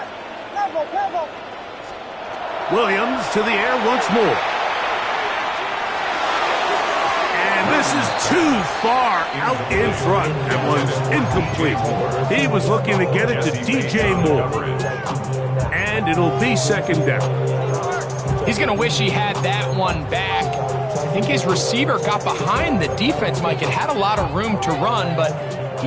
Williams to the air once more. And this is too far out in front. That one's incomplete. He was looking to get it to DJ Moore. And it'll be 2nd down. He's going to wish he had that one back. I think his receiver got behind the defense, Mike. It had a lot of room to run, but he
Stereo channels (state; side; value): identical; both; correlation 1.00